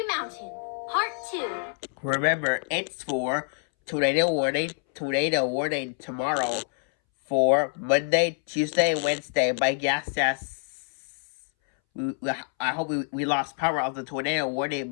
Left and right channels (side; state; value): right; silent; 60 dB below the other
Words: Mountain, Part 2. Remember, it's for tornado warning tomorrow for Monday, Tuesday, and Wednesday. My guess is I hope we lost power of the tornado warning.